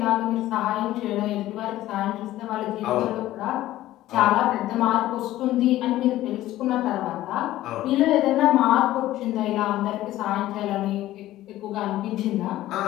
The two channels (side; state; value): right; quieter; 14.9 dB